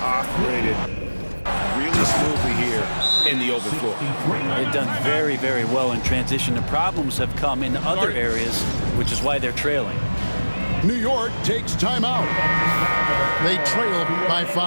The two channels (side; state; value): both; inverted; correlation -1.00